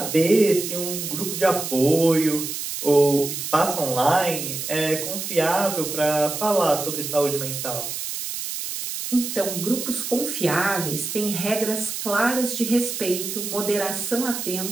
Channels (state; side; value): noise; right; hiss, 5 dB below the sound